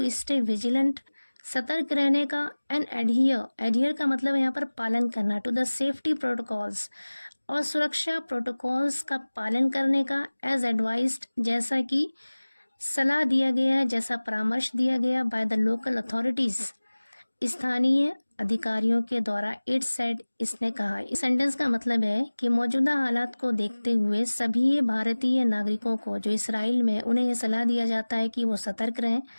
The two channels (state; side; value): inverted; both; correlation -1.00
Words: स्टे विजिलेंट, सतर्क रहने का, एंड एडहियर का मतलब है यहाँ पर पालन करना, टू द सेफ्टी प्रोटोकॉल्स और सुरक्षा प्रोटोकॉल्स का पालन करने का, एज एडवाइज्ड जैसा कि सलाह दिया गया है, जैसा परामर्श दिया गया, बाय द लोकल अथॉरिटीज स्थानीय अधिकारियों के द्वारा, इट सेड इसने कहा। इस सेंटेंस का मतलब है कि मौजूदा हालात को देखते हुए सभी भारतीय नागरिकों को जो इसराइल में, उन्हें यह सलाह दिया जाता है कि वो सतर्क रहें